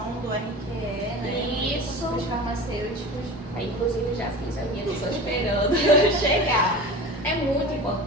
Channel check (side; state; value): both; normal; correlation 0.34